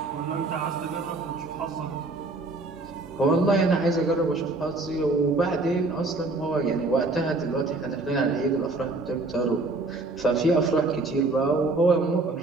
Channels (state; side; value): quieter; left; 3.2 dB